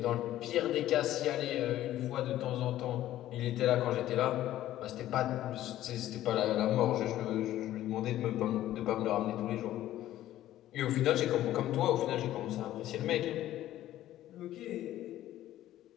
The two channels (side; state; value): right; quieter; 13.6 dB